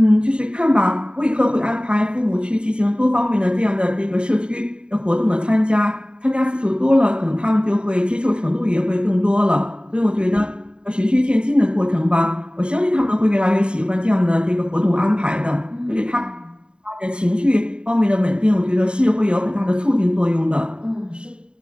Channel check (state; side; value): late; left; 0.050 ms